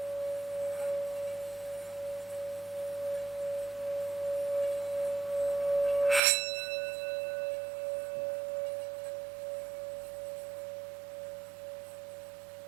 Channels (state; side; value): drops out; left; at 6.2 s